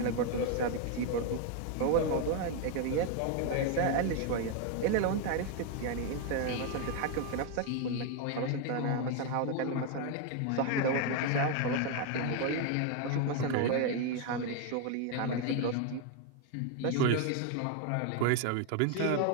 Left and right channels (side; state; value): both; different; correlation 0.01